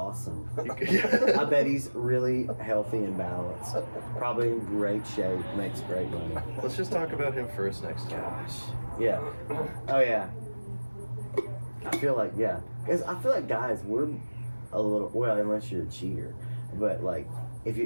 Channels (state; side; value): inverted; both; correlation -1.00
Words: I bet he's really healthy and balanced. Probably in great shape, makes great money. Let's just talk about him first next time. Gosh. Yeah. Oh, yeah. I feel like, yeah. Because I feel like guys, we're a little, well, unless you're a cheater. But, like, if